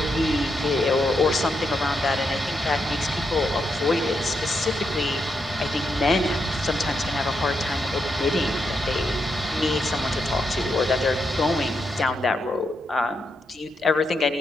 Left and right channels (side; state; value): both; normal; correlation 0.82